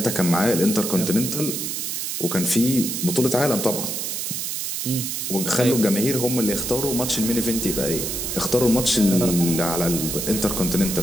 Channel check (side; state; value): right; noise; hiss, 3 dB below the sound